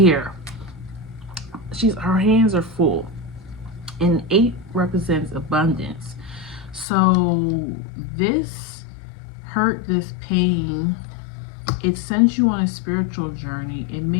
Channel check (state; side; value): drops out; right; at 6.9 s